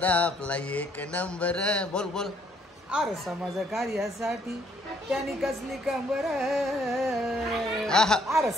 आपला एक नंबर. बोल. अरे समाज कार्यासाठी त्यांनी कसली कंबर. अरे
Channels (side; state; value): both; normal; correlation 0.67